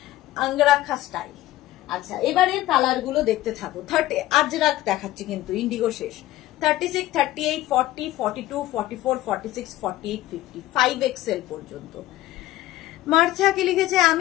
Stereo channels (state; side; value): quieter; right; 15.5 dB